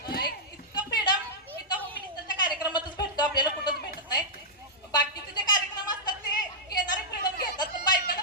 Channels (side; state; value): both; normal; correlation -0.11